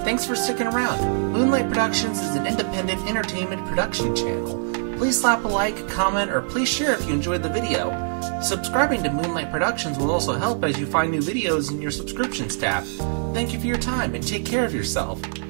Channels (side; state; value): left; silent; digital silence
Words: Thanks for sticking around. Moonlight Productions is an independent entertainment production channel. Please slap a like, a comment, or please share if you enjoyed the video. Subscribing to Moonlight Productions will also help as you find new videos in your subscriptions tab. Thank you for your time and take care of yourself.